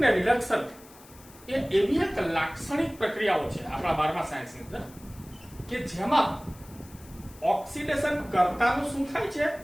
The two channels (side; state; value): left; noise; hiss, 23 dB below the sound